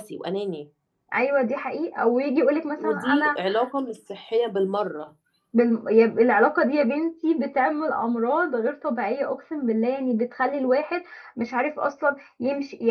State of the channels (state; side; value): identical; both; correlation 1.00